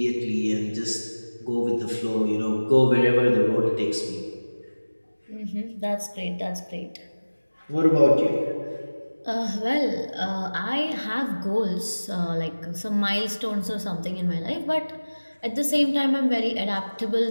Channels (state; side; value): inverted; both; correlation -1.00